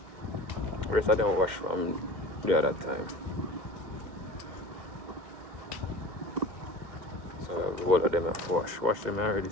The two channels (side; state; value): left; late; 2.1 ms